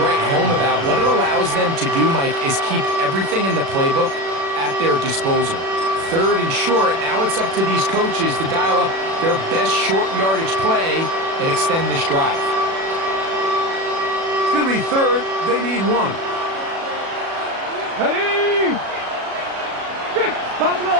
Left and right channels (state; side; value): late; left; 36 ms